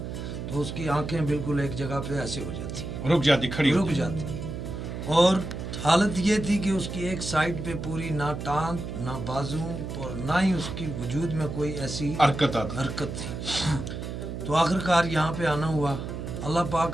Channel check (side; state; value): right; noise; hum, 6 dB below the sound